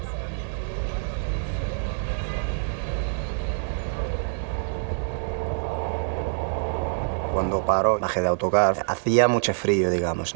Cuando paró, bajé de autocar, hacía mucho frío, digamos,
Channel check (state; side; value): silent; left; digital silence